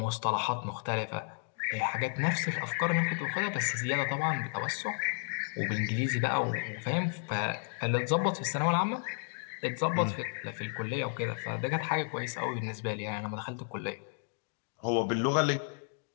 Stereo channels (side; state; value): right; silent; 56 dB below the other